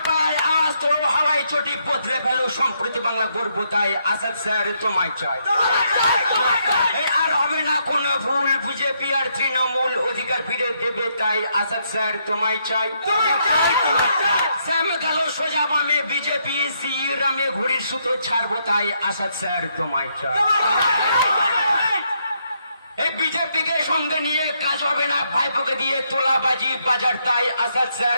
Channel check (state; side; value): inverted; both; correlation -0.75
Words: পাড়ায় আওয়াজ তোলো হাওয়াই চটি বদলে ফেলো সম্প্রতি বাংলা গর্ব তাই আসাদ স্যার তোমায় চাই। এই আর হবে না কোন ভুল বিজেপি আর তৃণমূল অধিকার ফিরে দেবে তাই আসাদ স্যার তোমায় চাই। শ্যাম গেল সোজা বামে বিজেপি শ্রীরামে ঘুড়ির সুতো ছাড়বো তাই আসাদ স্যার তোমায় চাই। এই বিজেপিকে সঙ্গে নিয়ে কাজ হবে না ভাইপোকে দিয়ে তোলাবাজি বাজার তাই আসাদ স্যার